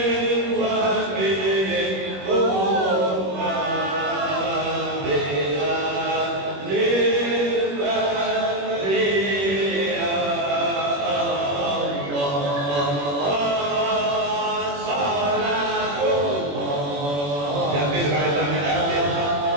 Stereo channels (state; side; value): late; left; 21 ms